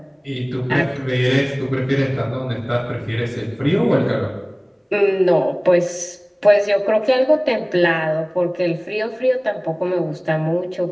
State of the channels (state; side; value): identical; both; correlation 1.00